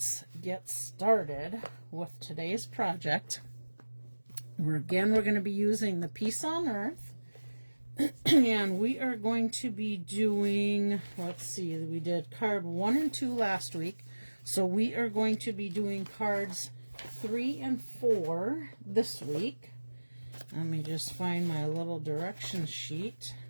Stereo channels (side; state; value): both; inverted; correlation -1.00